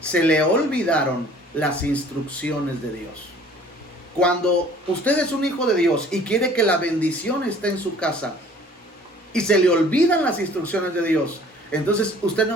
se le olvidaron las instrucciones de Dios. Cuando usted es un hijo de Dios y quiere que la bendición esté en su casa y se le olvidan las instrucciones de Dios, entonces usted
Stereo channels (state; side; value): normal; both; correlation 0.52